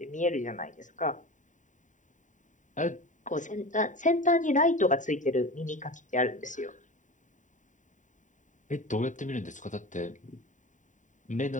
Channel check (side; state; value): right; late; 0.36 ms